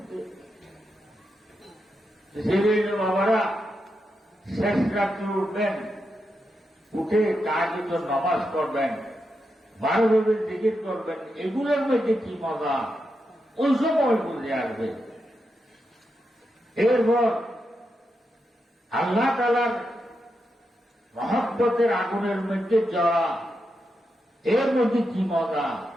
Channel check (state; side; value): normal; both; correlation 0.86